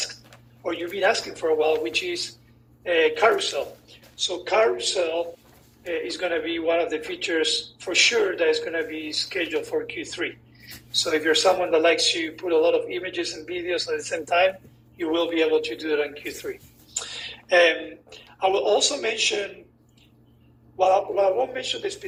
or you've been asking for a while, which is carousel. So carousel is going to be one of the features for sure that is going to be scheduled for Q3. So if you're someone that likes to put a lot of images and videos at the same time, you will be able to do it on Q3. I will also mention, well, I won't mention the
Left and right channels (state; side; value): identical; both; correlation 1.00